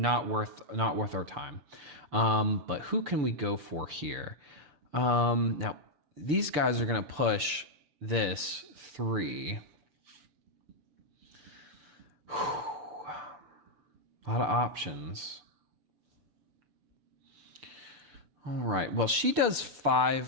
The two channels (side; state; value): left; late; 6.8 ms